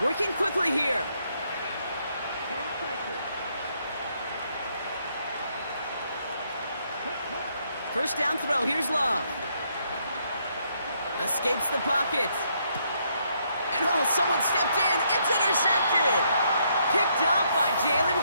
Working quickly here. First down throw. Here's Love. Escapes the pocket. And oh, someone stepped in. It's intercepted. Picked up by Jalen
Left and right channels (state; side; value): inverted; both; correlation -0.73